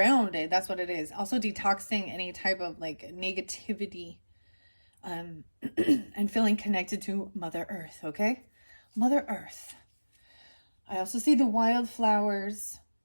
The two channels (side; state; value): both; inverted; correlation -1.00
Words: That's what it is. Also detoxing any type of like negativity, and feeling connected to Mother Earth. Okay. Mother Earth. I also see the wildflowers.